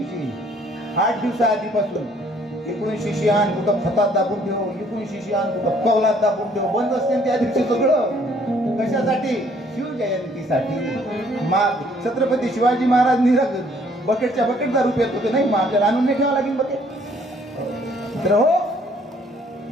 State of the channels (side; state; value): both; normal; correlation 0.62